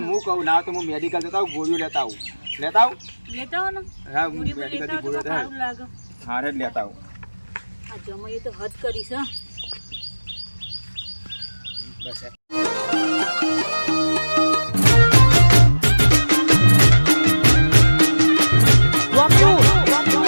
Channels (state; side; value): inverted; both; correlation -1.00